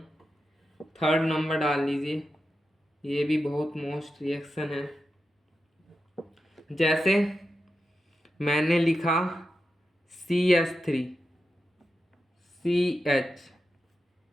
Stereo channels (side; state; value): both; normal; correlation 0.89